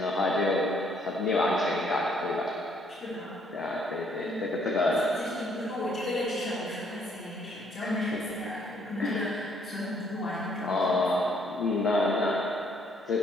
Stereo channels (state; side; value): normal; both; correlation 0.66